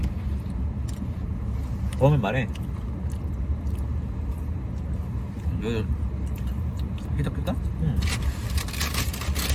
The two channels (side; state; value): both; identical; correlation 1.00